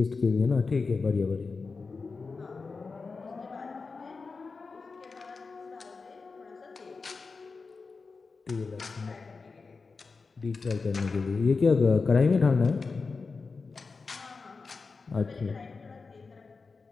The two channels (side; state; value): right; quieter; 4.4 dB